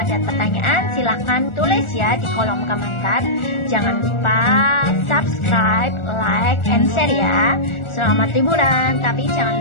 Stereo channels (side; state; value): right; late; 1.4 ms